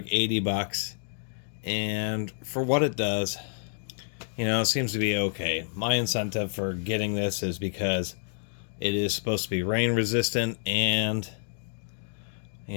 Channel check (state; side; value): silent; right; digital silence